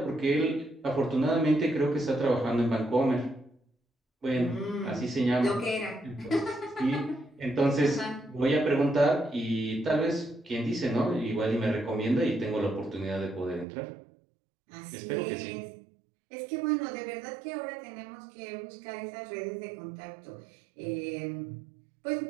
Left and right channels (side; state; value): left; drops out; at 13.7 s